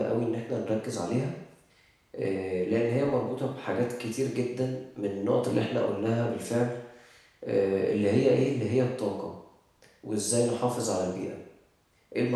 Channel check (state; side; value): identical; both; correlation 1.00